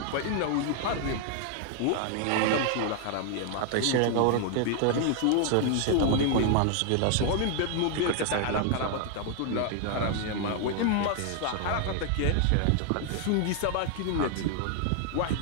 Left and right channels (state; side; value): different; both; correlation 0.00